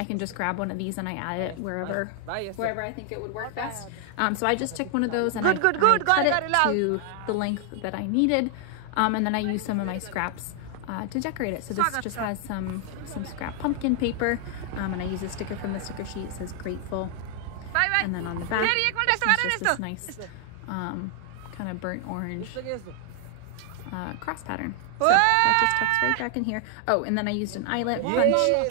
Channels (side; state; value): both; different; correlation 0.00